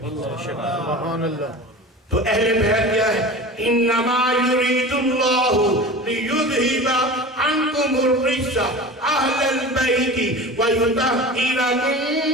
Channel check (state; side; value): normal; both; correlation 0.34